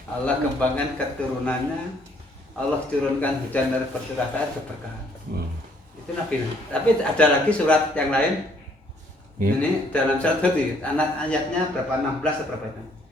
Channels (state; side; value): normal; both; correlation 0.65